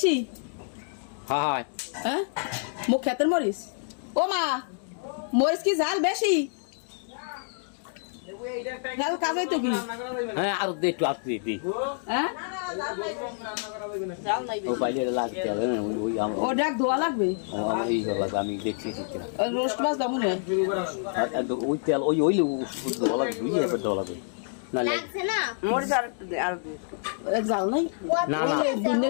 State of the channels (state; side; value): silent; right; digital silence